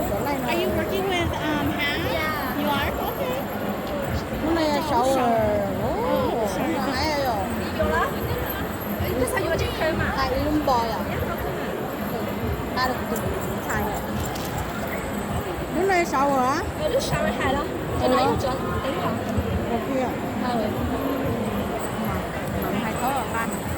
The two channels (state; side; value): identical; both; correlation 1.00